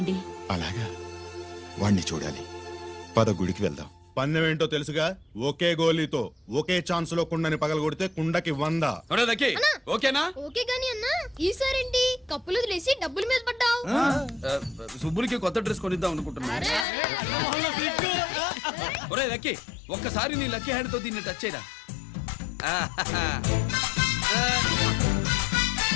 అలాగా, వాణ్ణి చూడాలి. పద గుడికి వెళ్దాం. పందెం ఏంటో తెలుసుగా, ఒకే గోలీతో ఒకే ఛాన్స్ లో కుండని పగలగొడితే కుండకి 100. ఒరే దక్కి, ఓకేనా? ఓకే గాని అన్నా, ఈసారేంటి కప్పులు వదిలేసి డబ్బుల మీద పడ్డావు? సుబ్బులకి కొత్త డ్రెస్ కొనిద్దాం అనుకుంటున్నా. ఒరే లక్కీ, ఒక్కసారి నీ లక్కీ హ్యాండ్ తో దీన్ని టచ్ చేయరా.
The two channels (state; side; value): drops out; right; at 16.9 s